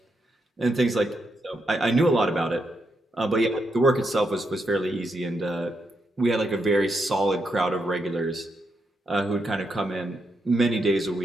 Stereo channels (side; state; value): both; normal; correlation 0.81